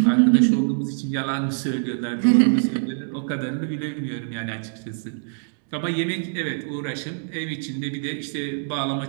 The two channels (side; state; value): left; silent; digital silence